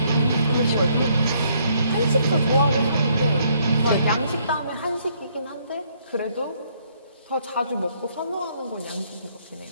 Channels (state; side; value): inverted; both; correlation -0.68